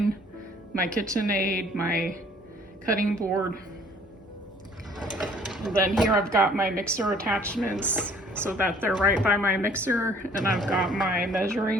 my KitchenAid, my cutting board. And then here I've got my mixer attachments so that they're right by my mixer. And I've got my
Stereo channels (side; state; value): both; normal; correlation 0.56